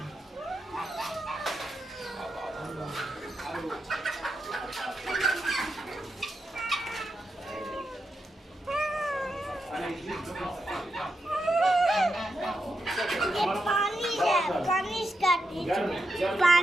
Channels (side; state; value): both; normal; correlation 0.86